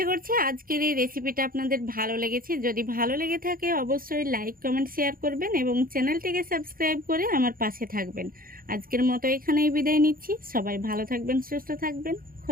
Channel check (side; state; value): left; late; 0.42 ms